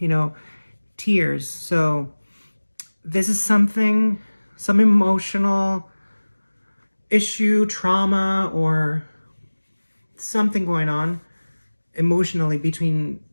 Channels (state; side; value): inverted; both; correlation -1.00